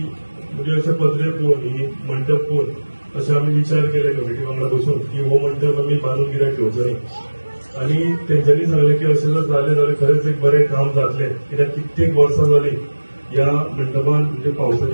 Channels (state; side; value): inverted; both; correlation -1.00